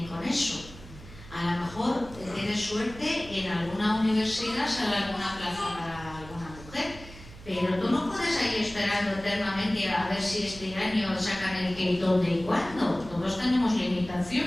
con eso. A lo mejor tienes suerte, en alguna universidad sale alguna plaza para alguna mujer, pero tú no puedes ahí esperando eternamente a ver si este año sacan el qué y dónde y cuándo. Todos tenemos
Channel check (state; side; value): noise; right; hum, 17 dB below the sound